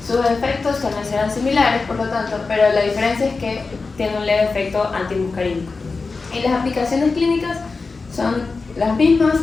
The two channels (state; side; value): quieter; right; 4.1 dB